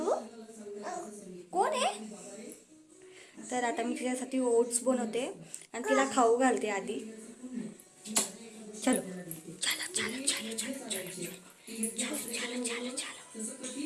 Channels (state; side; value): identical; both; correlation 1.00